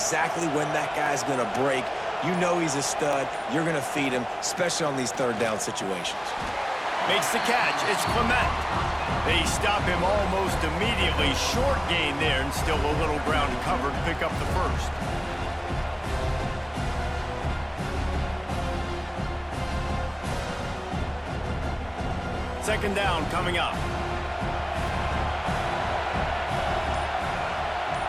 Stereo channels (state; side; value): identical; both; correlation 1.00